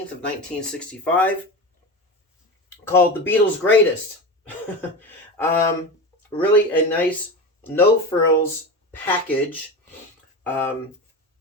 of 1965, called The Beatles Greatest. Really a nice no frills package.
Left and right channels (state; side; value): normal; both; correlation 0.25